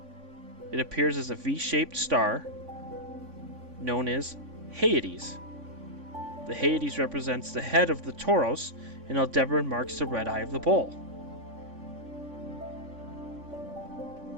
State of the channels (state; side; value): late; left; 3.5 ms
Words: It appears as a V-shaped star known as Hyades. The Hyades represents the head of the Taurus, and Aldebaran marks the red eye of the Bull.